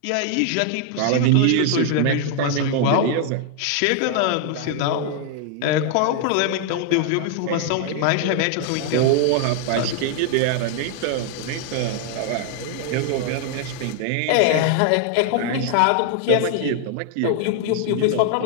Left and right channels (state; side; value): different; both; correlation 0.00